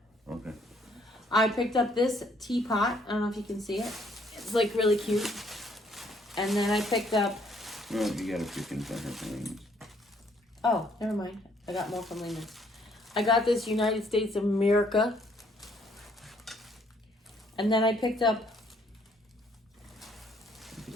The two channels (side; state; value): both; normal; correlation 0.66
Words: Okay. I picked up this teapot. I don't know if you can see it. It's like really cute. And then I picked up Well, you gotta freaking send her things. Oh, never mind. I got more from Lehman's. I got this United States of America. And then I picked up,